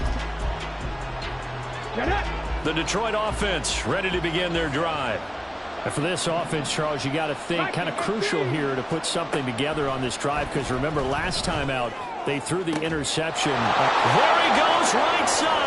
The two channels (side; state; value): both; identical; correlation 1.00